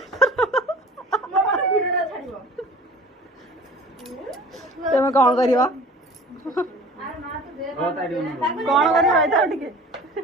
तुम कौन करिवा कौन करिवा टिके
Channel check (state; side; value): normal; both; correlation 0.43